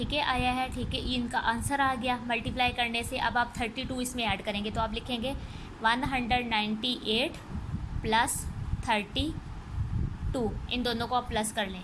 है, आया है, ठीक है। इनका आंसर आ गया मल्टीप्लाई करने से। अब आप 32 इसमें ऐड करेंगे, तो आप लिखेंगे 198 प्लस 32, इन दोनों को आप प्लस कर लें,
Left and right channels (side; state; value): both; identical; correlation 1.00